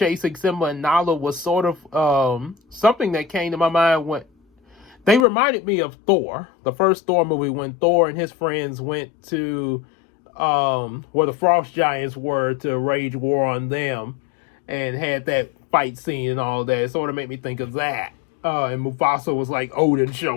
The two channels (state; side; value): drops out; right; at 5.2 s